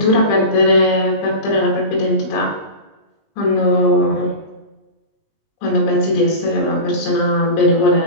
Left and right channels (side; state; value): right; late; 20 ms